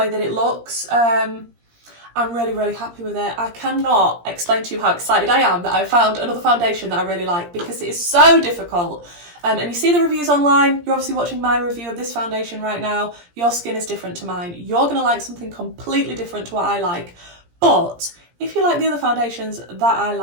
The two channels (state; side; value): late; left; 17 ms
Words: that it looks. I'm really, really happy with it. I cannot explain to you how excited I am that I found another foundation that I really like, because it is so difficult. And you see the reviews online. You're obviously watching my review of this foundation right now. Your skin is different to mine. You're going to like something completely different to what I like. But if you like the other foundations that I